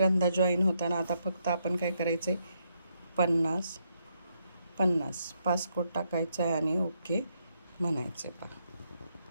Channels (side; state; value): both; inverted; correlation -0.78